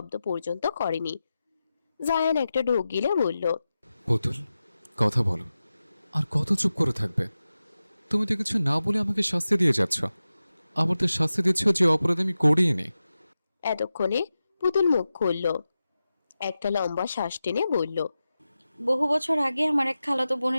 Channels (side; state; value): both; inverted; correlation -0.93